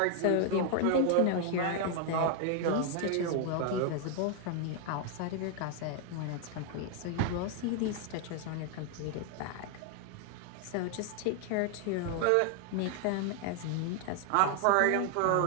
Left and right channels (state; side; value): different; both; correlation 0.00